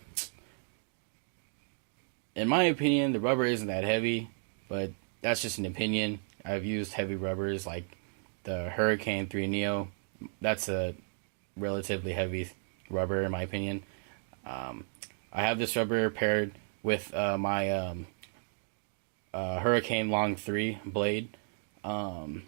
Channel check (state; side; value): silent; left; 55 dB below the other